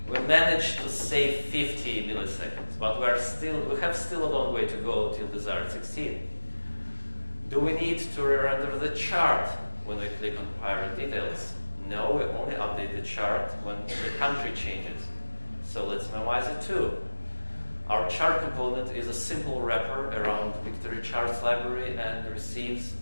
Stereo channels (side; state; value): both; inverted; correlation -1.00